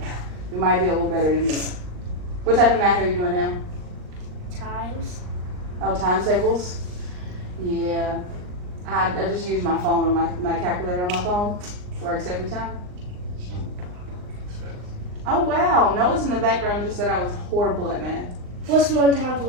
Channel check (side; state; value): left; late; 39 ms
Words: you might be a little better than me. What type of math are you doing now? Times. Oh, times tables? Yeah. I just use my phone on my calculator on my phone. Works every time. Oh wow, Noah's in the background just said I was horrible at math. What's 1 times